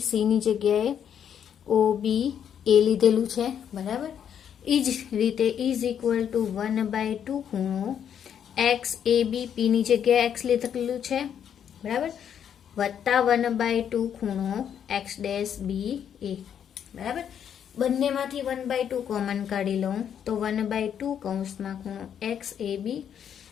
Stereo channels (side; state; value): right; quieter; 8.7 dB